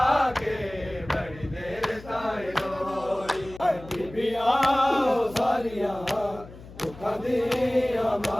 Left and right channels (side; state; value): left; noise; hum, 17 dB below the sound